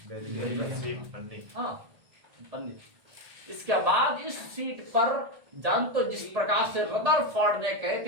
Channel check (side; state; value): left; late; 1.8 ms